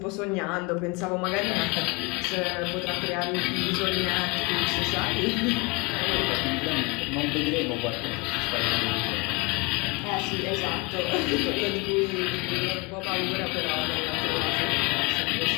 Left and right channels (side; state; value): right; quieter; 27.2 dB